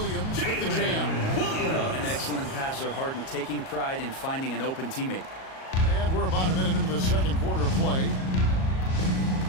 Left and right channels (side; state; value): right; late; 38 ms